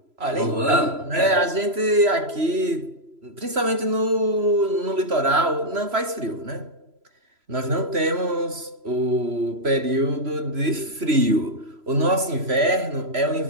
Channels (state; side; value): late; left; 3.0 ms